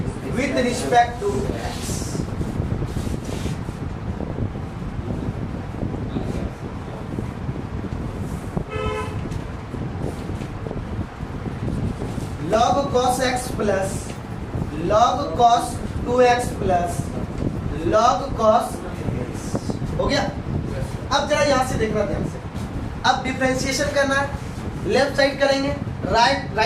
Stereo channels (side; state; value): both; identical; correlation 1.00